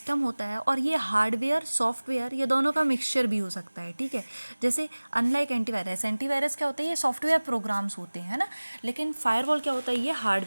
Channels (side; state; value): both; inverted; correlation -1.00